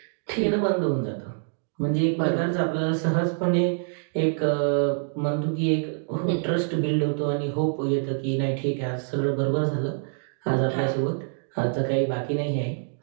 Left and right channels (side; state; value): left; silent; digital silence